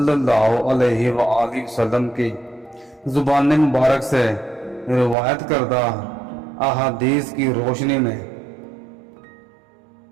اللہ علیہ وآلہ وسلم کی زبان مبارک سے روایت کردہ احادیث کی روشنی میں۔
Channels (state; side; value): drops out; left; at 5.2 s